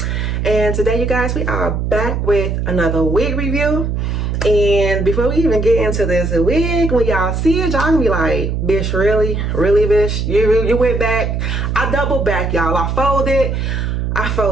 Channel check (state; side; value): noise; right; hum, 1 dB below the sound